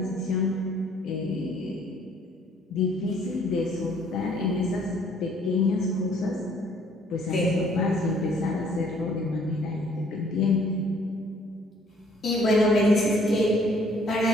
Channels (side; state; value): both; normal; correlation 0.61